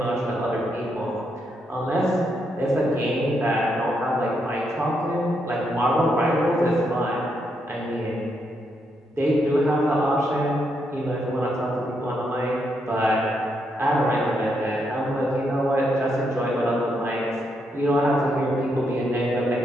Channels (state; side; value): normal; both; correlation 0.79